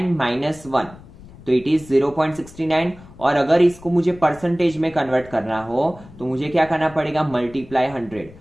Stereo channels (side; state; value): left; noise; rumble, 20 dB below the sound